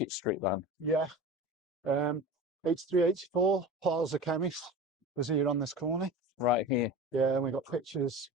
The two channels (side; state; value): both; normal; correlation 0.32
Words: Street then. Yeah. 8384, Paul's the chemist, was here on this corner. Right here. Yeah, and we got pictures